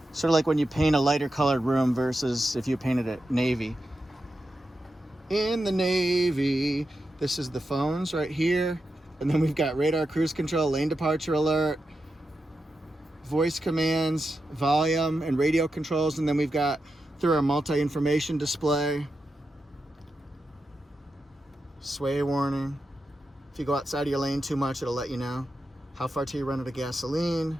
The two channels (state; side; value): normal; both; correlation 0.89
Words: Sort of like when you paint a lighter colored room versus if you painted it navy. In the navy, this is the phones right here. And then we've got radar, cruise control, lane departure alert, voice commands, volume, and radio controls. And then we've got through our multi-information display, sway warning. If you go outside of your lane too much, it'll let you know. How far till you run out of gasoline,